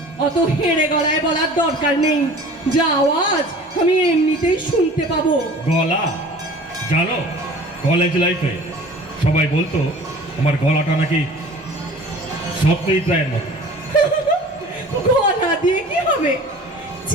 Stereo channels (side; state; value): both; normal; correlation 0.44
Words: অত হেড়ে গলায় বলার দরকার নেই, যা আওয়াজ আমি এমনিতেই শুনতে পাবো। গলা? জানো, কলেজ লাইফে সবাই বলতো আমার গলাটা নাকি সত্যিই প্রায় মতো। গলা দিয়ে কি হবে?